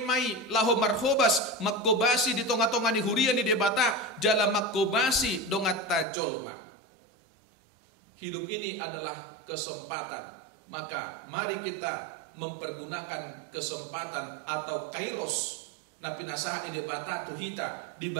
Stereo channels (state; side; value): drops out; left; at 6.1 s